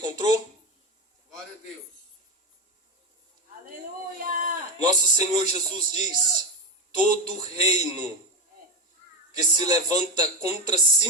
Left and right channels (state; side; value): normal; both; correlation 0.15